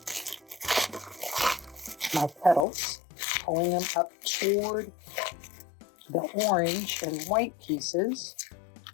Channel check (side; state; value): right; drops out; at 2.7 s